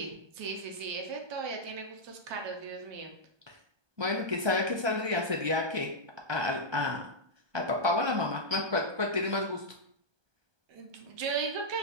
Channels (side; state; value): left; late; 1.2 ms